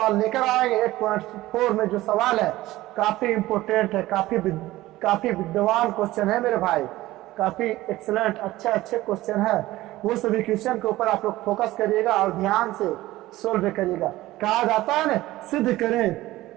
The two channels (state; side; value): quieter; left; 17.0 dB